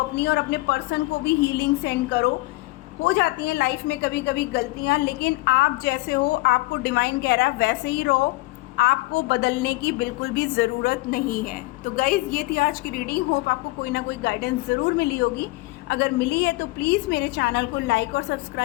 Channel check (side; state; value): right; quieter; 21.0 dB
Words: और अपने पर्सन को भी हीलिंग सेंड करो। हो जाती हैं लाइफ में कभी कभी गलतियां, लेकिन आप जैसे हो, आपको डिवाइन कह रहा है वैसे ही रहो, आपको बदलने की बिल्कुल भी ज़रूरत नहीं है। तो गाइज़, ये थी आज की रीडिंग। होप आपको कोई ना कोई गाइडेंस ज़रूर मिली होगी। अगर मिली है तो प्लीज़ मेरे चैनल को लाइक और